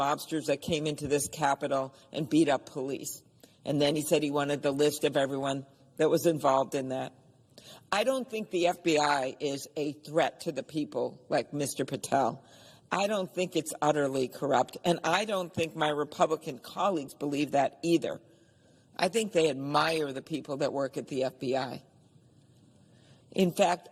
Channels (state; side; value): identical; both; correlation 1.00